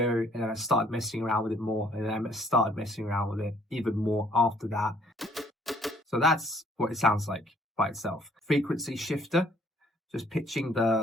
and then I started messing around with it more, and then I started messing around with it even more after that. So that's what it sounds like by itself. Frequency shifter, just pitching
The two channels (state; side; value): normal; both; correlation 0.62